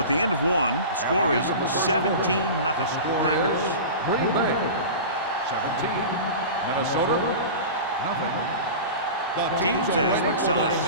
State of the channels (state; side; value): inverted; both; correlation -0.32